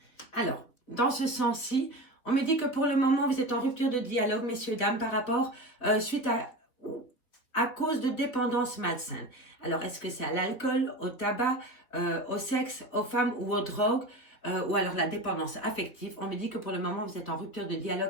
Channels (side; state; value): right; late; 4.0 ms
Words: Alors, dans ce sens-ci, on me dit que pour le moment, vous êtes en rupture de dialogue, messieurs, dames, par rapport, suite à cause de dépendance malsaine. Alors, est-ce que c'est à l'alcool, au tabac, au sexe, aux femmes ou aux drogues, ou alors la dépendance affective? On me dit que pour le moment, vous êtes en rupture de